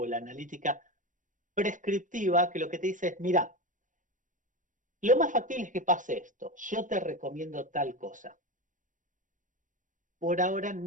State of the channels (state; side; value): late; left; 0.37 ms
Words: la analítica prescriptiva, que lo que te dice es, mira, lo más factible es que pase esto, yo te recomiendo tal cosa. Por ahora